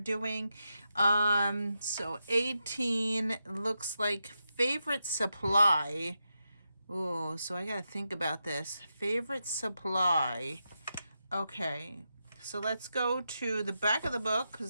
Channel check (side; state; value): both; inverted; correlation -0.87